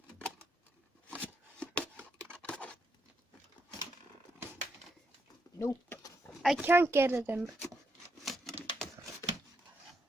Nope, I can't get it in.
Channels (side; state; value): both; normal; correlation 0.80